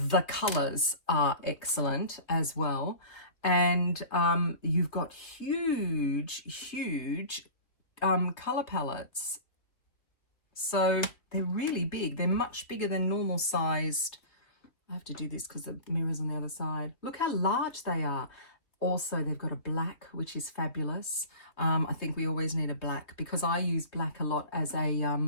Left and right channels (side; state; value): right; late; 2.9 ms